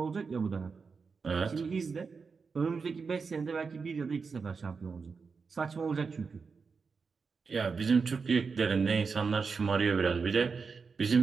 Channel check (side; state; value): left; quieter; 5.1 dB